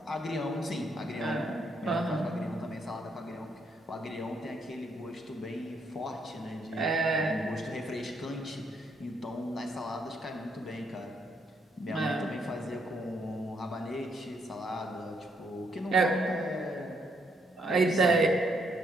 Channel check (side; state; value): both; normal; correlation 0.74